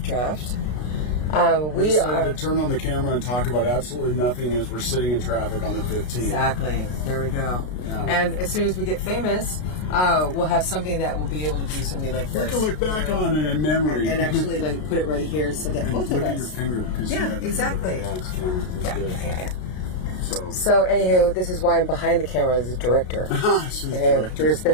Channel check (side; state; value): right; late; 33 ms